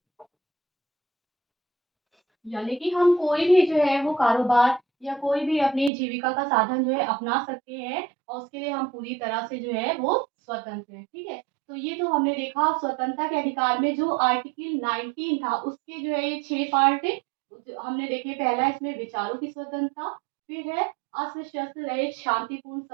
यानी कि हम कोई भी जो है वो कारोबार या कोई भी अपनी जीविका का साधन जो है अपना सकते हैं और उसके लिए हम पूरी तरह से जो है वो स्वतंत्र हैं, ठीक है। तो ये तो हमने देखा स्वतंत्रता के अधिकार में जो आर्टिकल 19 था उसके जो है ये 6 पार्ट हमने देखे। पहला इसमें विचारों की स्वतंत्रता, फिर है अस्त्र शस्त्र रहित शांतिपूर्ण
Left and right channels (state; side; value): drops out; left; at 5.9 s